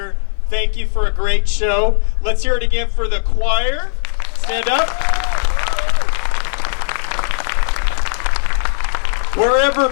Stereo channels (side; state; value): right; silent; 56 dB below the other